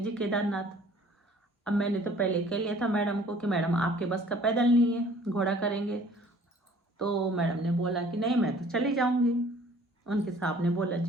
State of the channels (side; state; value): both; normal; correlation 0.53